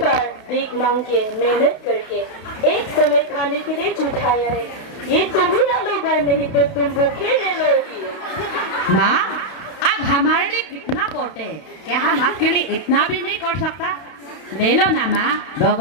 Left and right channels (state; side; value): late; right; 32 ms